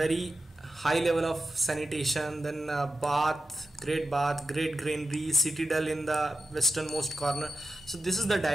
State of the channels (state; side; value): normal; both; correlation 0.91